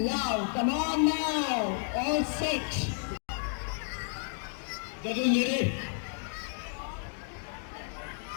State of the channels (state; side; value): silent; right; digital silence